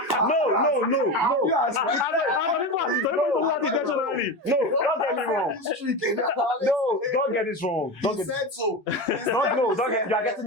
I'm not intentionally. No, don't get me wrong. No, don't get this wrong. Don't get said so. don't get. You are getting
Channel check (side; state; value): both; normal; correlation 0.22